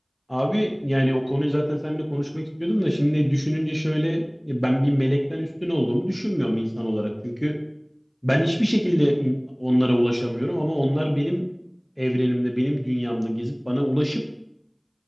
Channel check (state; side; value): identical; both; correlation 1.00